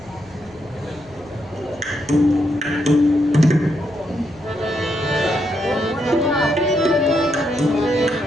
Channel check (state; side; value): noise; left; hum, 26 dB below the sound